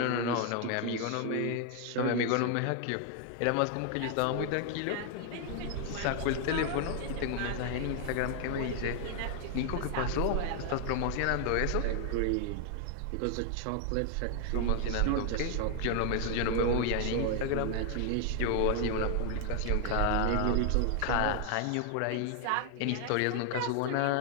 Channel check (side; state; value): both; different; correlation 0.00